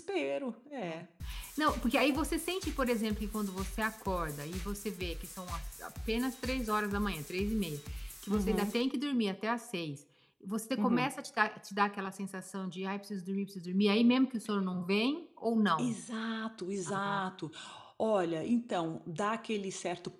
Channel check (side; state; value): both; identical; correlation 1.00